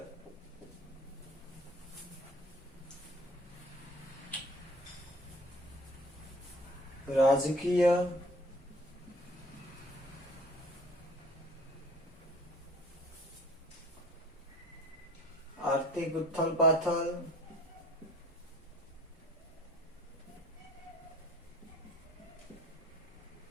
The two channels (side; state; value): both; normal; correlation 0.49